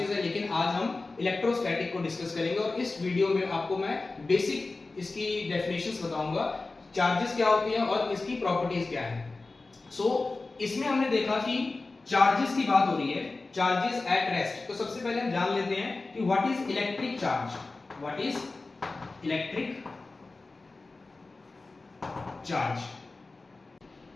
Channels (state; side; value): quieter; right; 3.5 dB